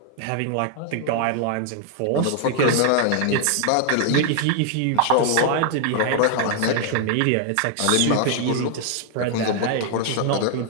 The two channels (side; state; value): both; different; correlation 0.00